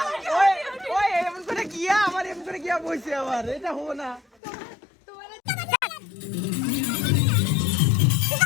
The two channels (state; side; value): drops out; right; at 4.2 s